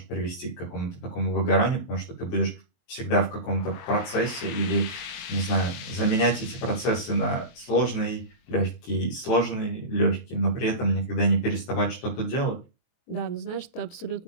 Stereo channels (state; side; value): late; right; 23 ms